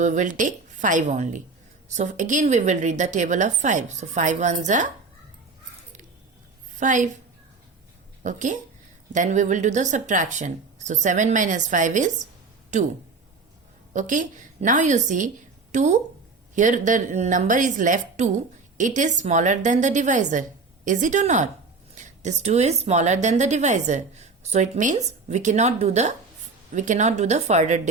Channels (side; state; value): left; quieter; 4.2 dB